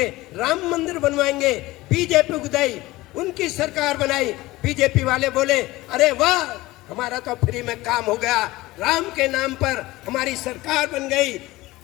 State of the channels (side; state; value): right; quieter; 19.0 dB